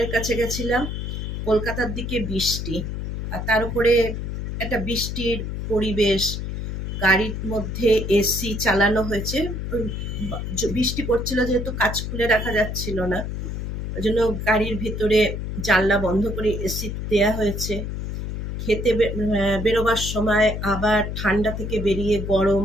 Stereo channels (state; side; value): noise; left; hum, 5 dB below the sound